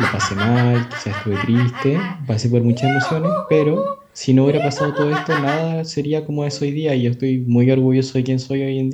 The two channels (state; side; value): identical; both; correlation 1.00